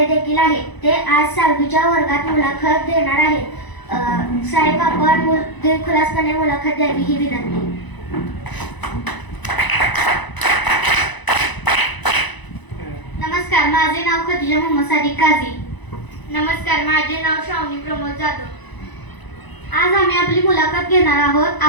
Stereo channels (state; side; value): late; right; 1.0 ms